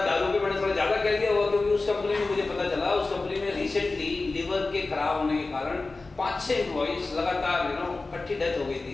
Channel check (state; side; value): quieter; right; 3.5 dB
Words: पे मैंने थोड़ा ज्यादा कह दिया हुआ, क्योंकि उस कंपनी में मुझे पता चला, उस कंपनी में रिसेंटली लिवर के खराब होने के कारण 5-6 एम्प्लॉइज लगातार इकट्ठी डेथ हो गई